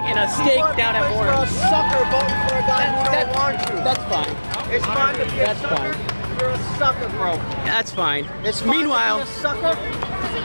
and a steak down at You're a Orange. sucker voting for a guy who don't want you. That's fine. It's fine to be a That's sucker. fine. You're a sucker, bro. That's fine. It's fine Meanwhile, to be a sucker.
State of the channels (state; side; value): inverted; both; correlation -1.00